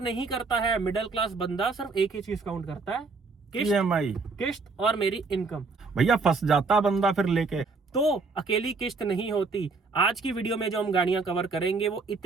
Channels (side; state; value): left; quieter; 4.1 dB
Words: नहीं करता है। मिडिल क्लास बंदा सिर्फ एक ही चीज काउंट करता है, EMI, किस्त और मेरी इनकम। भैया फंस जाता बंदा फिर लेके। तो अकेली किस्त नहीं होती। आज की वीडियो में जो हम गाड़ियां कवर करेंगे वो